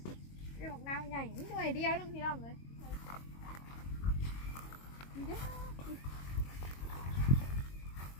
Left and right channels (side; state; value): right; late; 22 ms